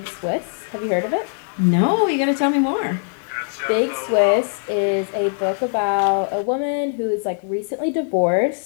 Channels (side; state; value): right; silent; 65 dB below the other